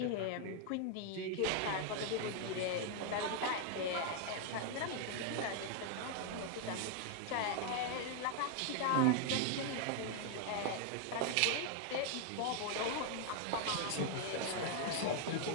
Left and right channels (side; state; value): both; different; correlation 0.00